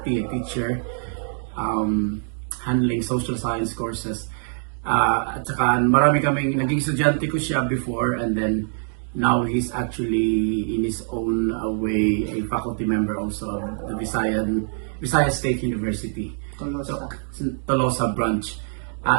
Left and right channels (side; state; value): left; silent; 63 dB below the other